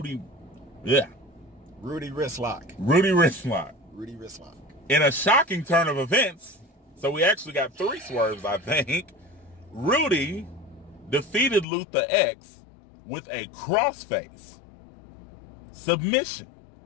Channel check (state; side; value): drops out; right; at 11.7 s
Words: Wristlock. Rudy Wristlock. Rudy Wristlock. In a shocking turn of events, so we actually got 3 swerves, I think. Rudy defeated Luther X with a crossface submission.